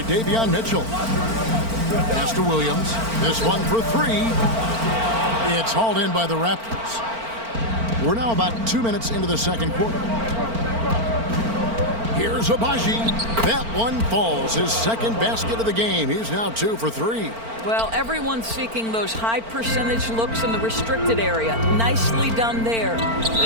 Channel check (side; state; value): left; late; 4.4 ms